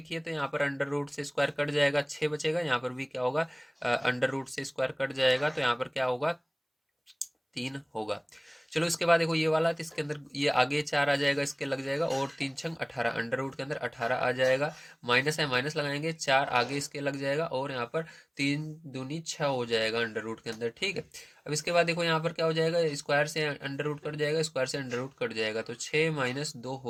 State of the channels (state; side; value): identical; both; correlation 1.00